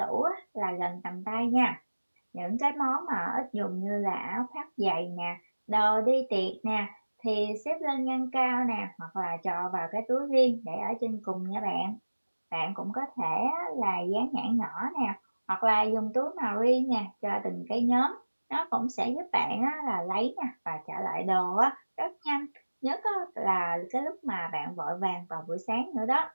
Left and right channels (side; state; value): both; inverted; correlation -1.00